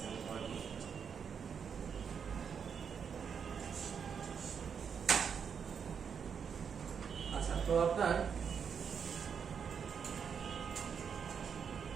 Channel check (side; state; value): left; quieter; 6.9 dB